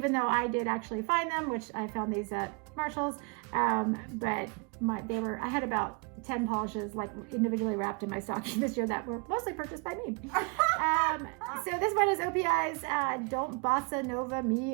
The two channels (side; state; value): left; quieter; 33.2 dB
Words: though I did actually find them, which I found these at Marshall's, but I had about 10 polishes like individually wrapped in my stocking this year that were mostly purchased by me. So this one is OPI's Don't Bossa Nova